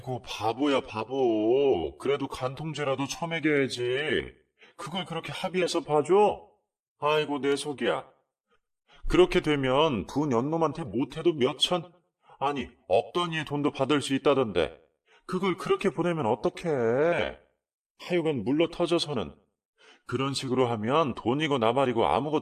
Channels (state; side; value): identical; both; correlation 1.00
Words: 바보야 바보. 그래도 간통죄라도 처먹여야지. 그걸 그렇게 합의해서 봐줘? 아이고 내 속이야. 그렇게 되면 부 연놈한테 못해도 몇천, 아니 억 단위의 돈도 받을 수 있다던데 그걸 그렇게 보내면 어떡해. 하여간 물러 터져서는 그런 식으로 하면 돈이고 나발이고